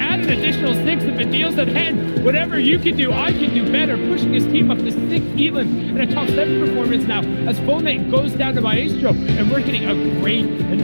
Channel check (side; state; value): both; inverted; correlation -1.00